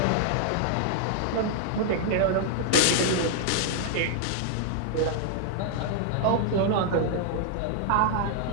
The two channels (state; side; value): different; both; correlation 0.00